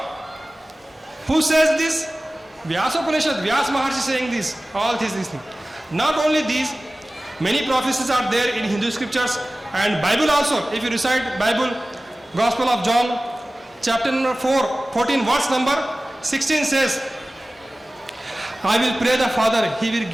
Who says this? Vyasa Upanishad, Vyasa Maharshi saying this, all these things. Not only these, many prophecies are there in Hindu scriptures and Bible also. If you recite Bible, Gospel of John, chapter number 14, verse number 16 says, I will pray the Father, He will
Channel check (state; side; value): normal; both; correlation 0.97